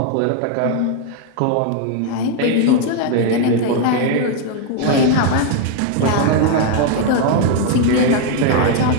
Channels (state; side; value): different; both; correlation 0.00